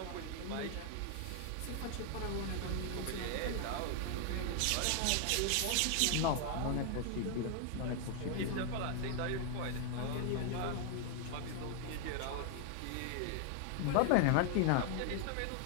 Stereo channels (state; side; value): different; both; correlation 0.00